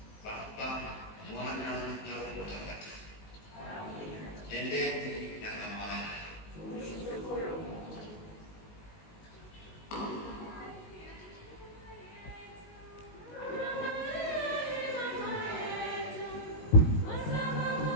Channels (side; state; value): right; late; 19 ms